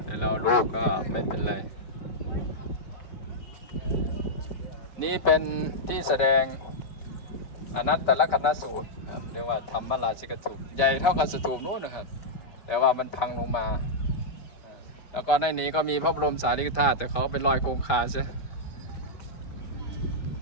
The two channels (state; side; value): late; right; 5.1 ms